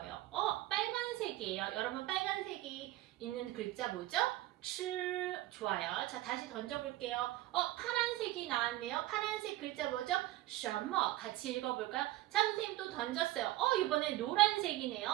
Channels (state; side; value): quieter; left; 16.6 dB